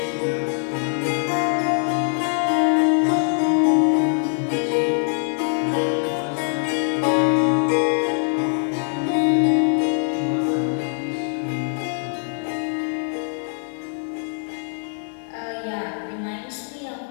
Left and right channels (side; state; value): right; silent; digital silence